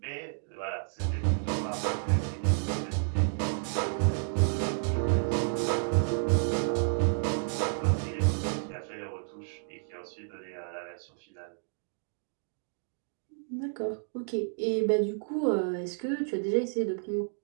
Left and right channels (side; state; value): left; silent; digital silence